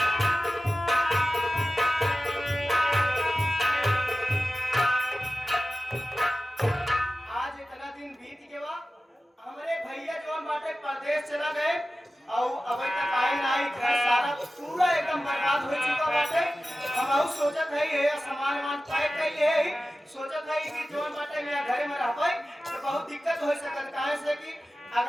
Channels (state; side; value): normal; both; correlation 0.95